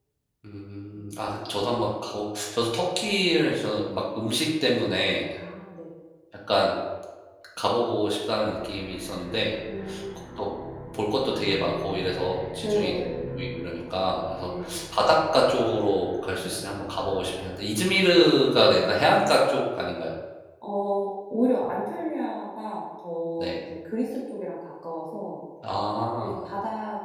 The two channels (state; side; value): identical; both; correlation 1.00